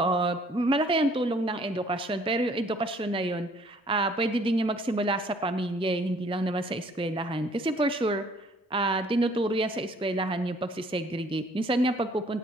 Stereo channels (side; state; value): both; normal; correlation 0.59